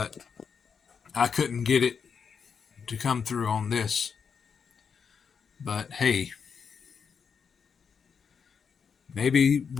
I couldn't get it to come through on this. But hey, maybe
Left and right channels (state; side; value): quieter; right; 6.4 dB